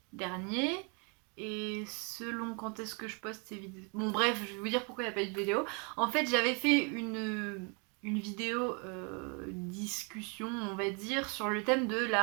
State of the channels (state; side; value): quieter; left; 34.6 dB